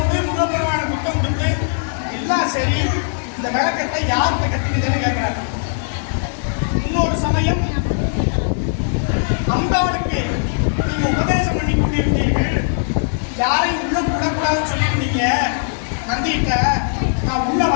முருகப்பெருமான புத்தம் கொடுத்து எல்லாம் சரி, இந்த விளக்கத்தை யார்கிட்ட கட்டிக்கிட்டேன்னு கேட்கிறாரு. இன்னொரு சமயம் அம்பாளுக்கு நீங்க உபதேசம் பண்ணி கொண்டிருந்தீர்கள், யாரையும் உள்ள விடக்கூடாதுன்னு சொல்லியிருந்தீங்க. நந்திட்ட நான் உள்ள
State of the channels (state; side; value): silent; right; digital silence